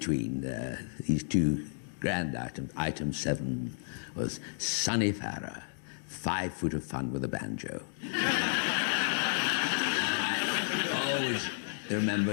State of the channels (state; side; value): silent; right; digital silence